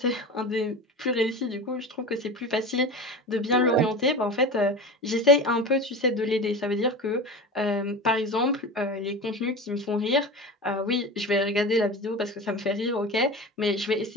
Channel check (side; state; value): both; normal; correlation 0.30